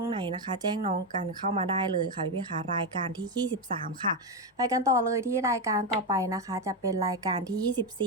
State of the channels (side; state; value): both; normal; correlation 0.09